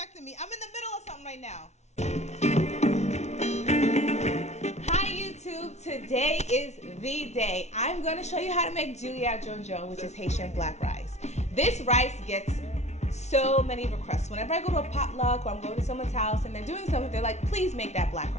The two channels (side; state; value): right; late; 0.32 ms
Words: me. I'm in the middle of something right now. Hi YouTube, today is the day. I'm going to show you how to make Djon-djon, which is Haitian black rice. This rice gets so many requests. Whenever I go to a potluck or I'm going to someone's house and they're doing something, they're like, please make that black